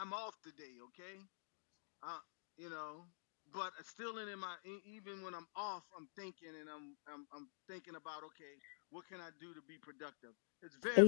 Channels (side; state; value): right; silent; digital silence